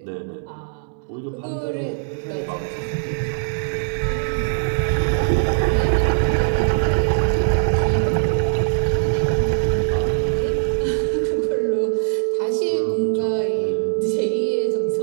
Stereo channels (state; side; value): silent; left; digital silence